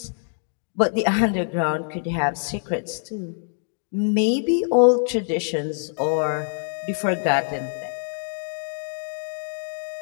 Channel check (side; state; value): right; silent; digital silence